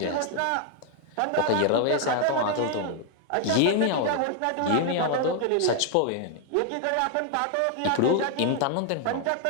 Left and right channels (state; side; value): different; both; correlation 0.00